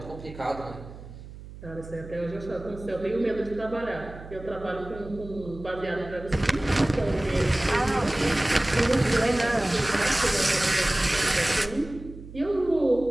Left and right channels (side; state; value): right; noise; hum, 15 dB below the sound